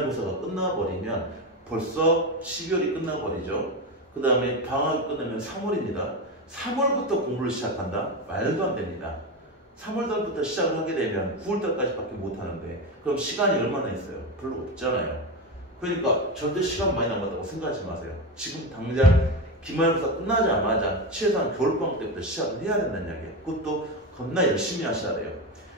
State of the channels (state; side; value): normal; both; correlation 0.16